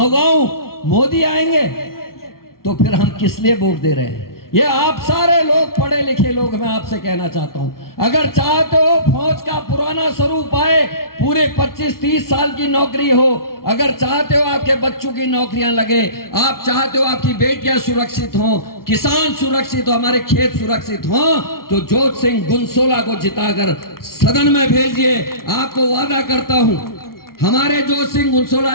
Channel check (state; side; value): late; right; 0.93 ms